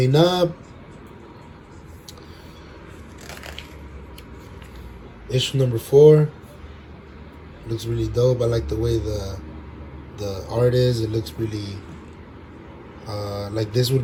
up. Issue number 4 looks really dope. I like the way the art is. It looks really like this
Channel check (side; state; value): both; identical; correlation 1.00